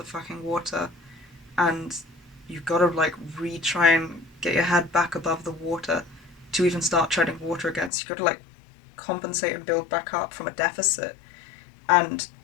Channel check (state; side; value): drops out; right; at 7.9 s